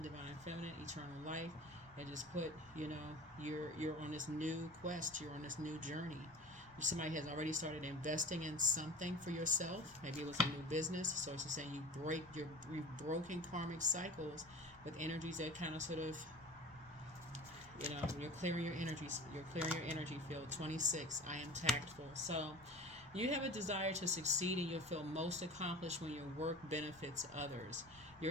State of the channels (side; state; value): left; noise; rumble, 25 dB below the sound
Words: divine feminine, eternal life. And just put, you're on this new quest. You're on this new journey. Somebody has already started investing in something for yourself. Maybe it was a new business. So it's just saying you've broken karmic cycles with energies that kind of sort of, you're clearing your energies. You're clearing your energy field. 26. I am tactful. So You have a desire to succeed and you'll feel most accomplished when your work benefits others.